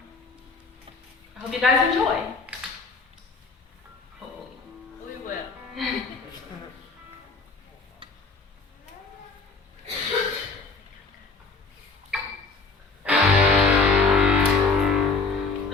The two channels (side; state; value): right; quieter; 4.1 dB